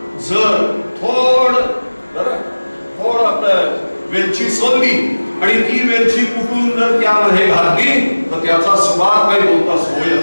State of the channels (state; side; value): inverted; both; correlation -1.00